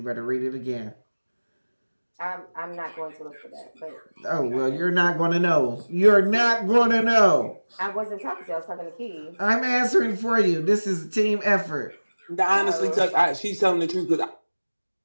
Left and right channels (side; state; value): both; inverted; correlation -1.00